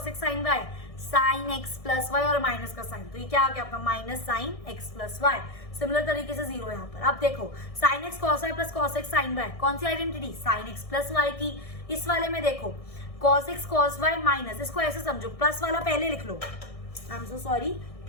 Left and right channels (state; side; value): late; right; 1.6 ms